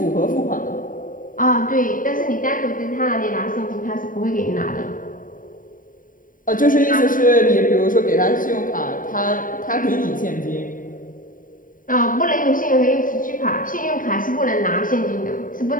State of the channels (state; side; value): late; right; 0.39 ms